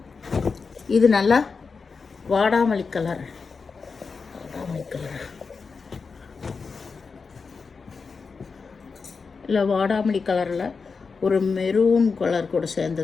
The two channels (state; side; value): quieter; right; 4.9 dB